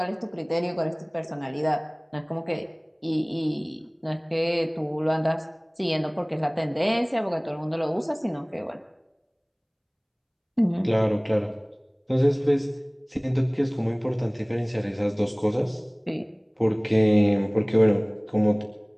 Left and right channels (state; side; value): identical; both; correlation 1.00